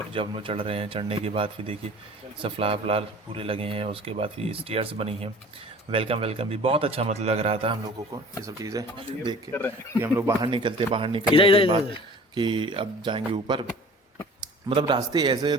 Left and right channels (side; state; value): both; normal; correlation 0.46